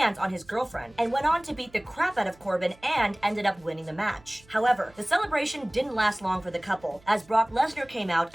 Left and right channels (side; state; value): right; noise; hum, 27 dB below the sound